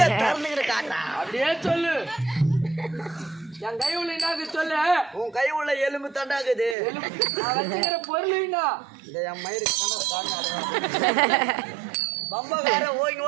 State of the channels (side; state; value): left; drops out; at 6.8 s